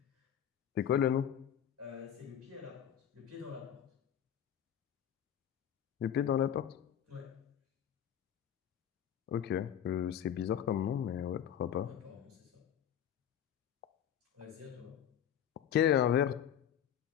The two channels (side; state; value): right; quieter; 9.5 dB